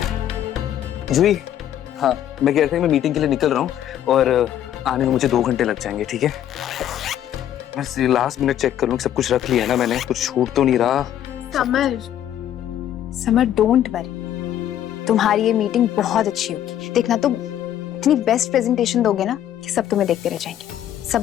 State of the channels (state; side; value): quieter; right; 11.1 dB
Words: जूही, हाँ मैं कह रहा था मैं मीटिंग के लिए निकल रहा हूँ और आने में मुझे 2 घंटे लग जाएंगे, ठीक है? बस लास्ट मिनट चेक कर लूँ, सब कुछ रख लिया ना मैंने, कुछ छूट तो नहीं रहा। समर डोंट वरी, तुम्हारी ये मीटिंग बहुत अच्छी होगी। देखना, तुम इतनी बेस्ट प्रेजेंटेशन दोगे ना कि सब तुम्हें देखते रह जाएंगे। सब